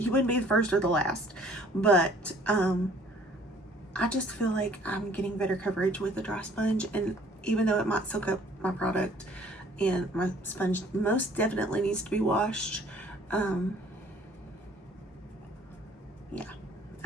wouldn't be the first or the last. But I just feel like I'm getting better coverage with the dry sponge. And even though it might soak up my product, and my sponge most definitely needs to be washed, yeah,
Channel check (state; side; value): normal; both; correlation 0.56